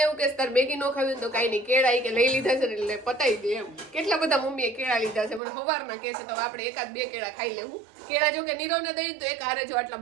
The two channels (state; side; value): drops out; left; at 5.4 s